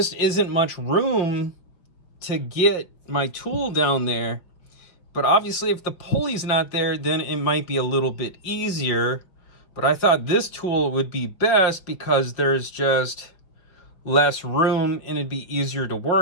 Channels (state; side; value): late; right; 5.5 ms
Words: isn't much room to get my tool down there. But obviously if the pulley's not there, then it might be a little bit easier. But I thought this tool would be best because there's just less room and it'd be easier to